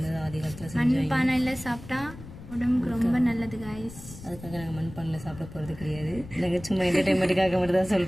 ஆதி காலத்தில் செஞ்சு. மண்பானையில் சாப்பிட்டா உடம்புக்கு ரொம்ப நல்லது காய்ஸ். அதுக்காக நாங்கள் மண்பானையில் சாப்பிட போகிறது கிடையாது. நாங்கள் சும்மா என்டர்டைன்மெண்ட்டுக்காக மட்டும் தான்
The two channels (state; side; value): noise; left; rumble, 15 dB below the sound